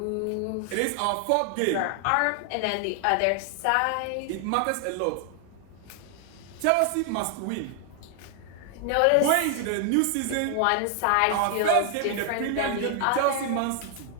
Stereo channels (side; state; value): both; different; correlation 0.00